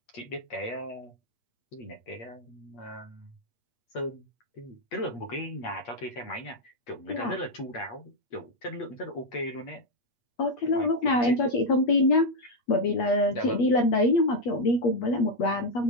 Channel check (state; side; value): late; right; 8.4 ms